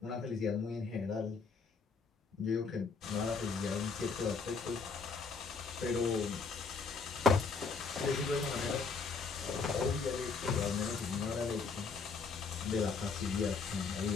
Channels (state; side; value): quieter; right; 4.9 dB